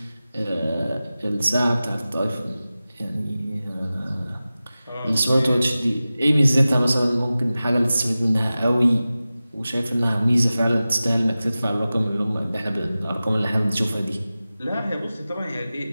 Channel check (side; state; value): both; inverted; correlation -0.96